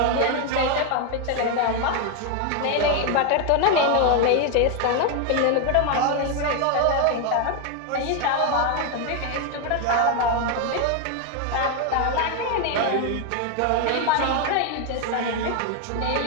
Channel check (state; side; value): different; both; correlation 0.01